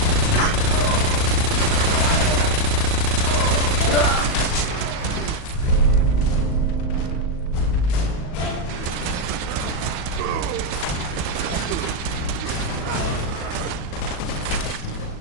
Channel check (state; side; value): late; right; 38 ms